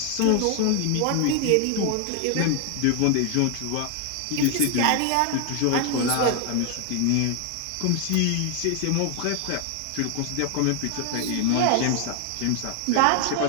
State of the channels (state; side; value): different; both; correlation 0.00